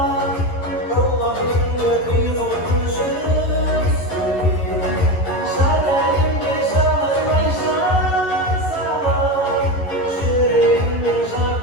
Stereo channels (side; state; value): right; late; 11 ms